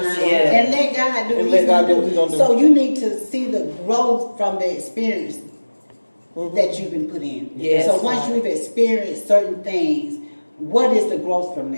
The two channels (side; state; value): both; inverted; correlation -1.00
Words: Yeah. and let God do And what let he's God gonna do what he's gonna do. So you need to see the growth from the experience that you've been put in. Yes. So once you've experienced certain things, what is the growth from